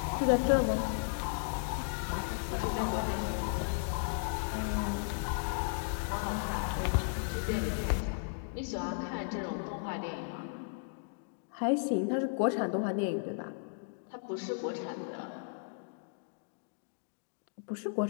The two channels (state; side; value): silent; right; digital silence